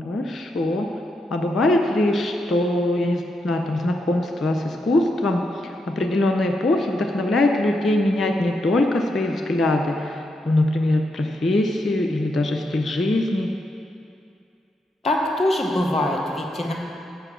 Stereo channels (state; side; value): normal; both; correlation 0.82